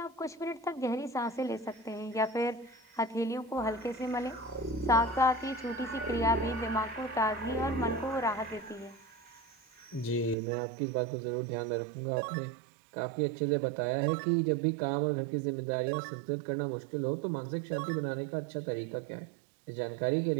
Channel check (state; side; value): drops out; left; at 10.4 s